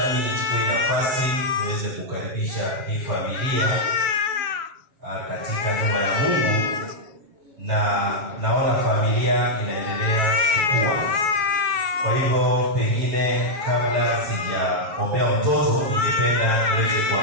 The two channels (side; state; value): left; late; 7.4 ms